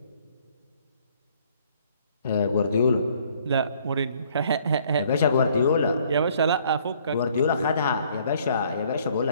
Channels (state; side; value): inverted; both; correlation -0.61